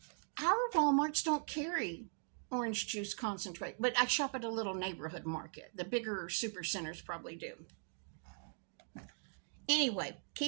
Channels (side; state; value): left; silent; 51 dB below the other